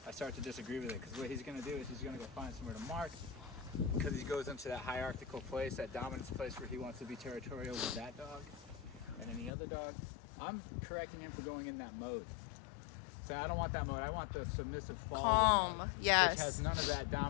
I start to disagree with it because what he's going to do is he's going to go find somewhere to mark because he goes into that hierarchical place, that dominance place where he wants to be territorial with that dog and any other dog. I'm correcting him for going in that mode. So I don't want that mode. I want the submissive follower Calm. mode, Yes. which has none of that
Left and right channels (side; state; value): right; drops out; at 9.5 s